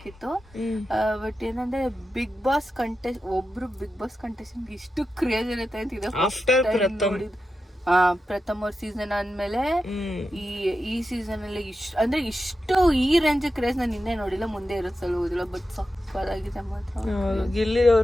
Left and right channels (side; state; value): both; normal; correlation 0.90